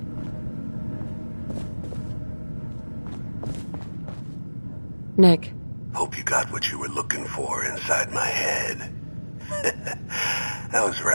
Nick. Hope you got what you were looking for inside my head. I was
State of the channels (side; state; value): both; inverted; correlation -1.00